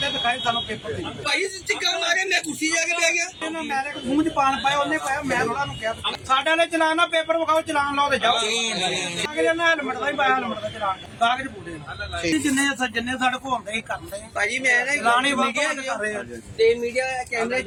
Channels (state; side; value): identical; both; correlation 1.00